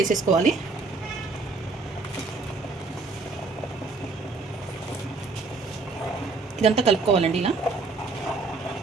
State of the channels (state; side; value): quieter; left; 3.9 dB